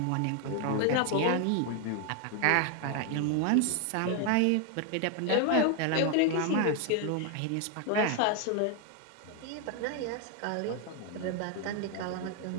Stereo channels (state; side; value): different; both; correlation 0.00